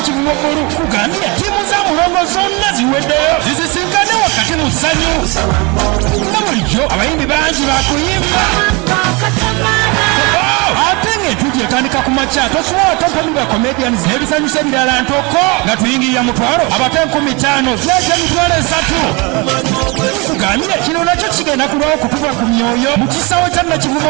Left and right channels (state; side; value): quieter; left; 28.0 dB